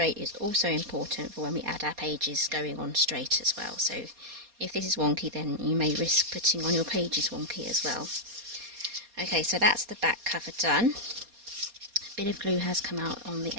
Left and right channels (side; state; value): left; late; 4.2 ms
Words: is also important for when we add our pages going on straight as well. So if this is wonky, then you may risk putting on your pages wonky as well. Okay, so that's the back cover done. A bit of glue has come out on the